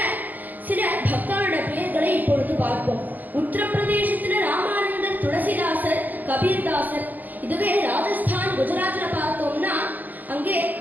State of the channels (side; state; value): left; late; 0.083 ms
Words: சில பக்தாளோட பெயர்களை இப்பொழுது பார்ப்போம். உத்தரப்பிரதேசத்துல ராமானந்தர், துளசிதாசர், கபீர்தாசர். இதுவே ராஜஸ்தான், குஜராத்ல பார்த்தோம்னா அங்கே